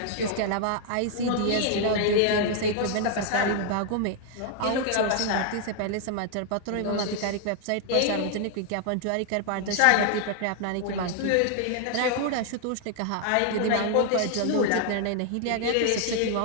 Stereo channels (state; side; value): different; both; correlation 0.00